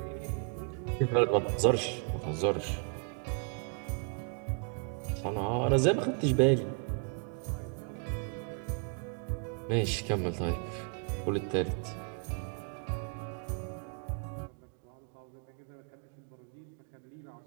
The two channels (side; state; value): left; quieter; 39.4 dB